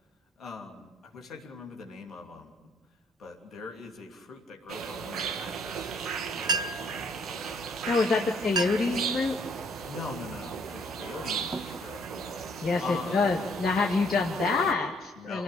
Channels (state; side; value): normal; both; correlation 0.64